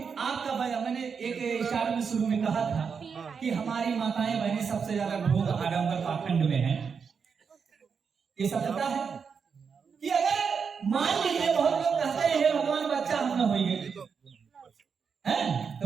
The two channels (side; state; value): left; quieter; 6.1 dB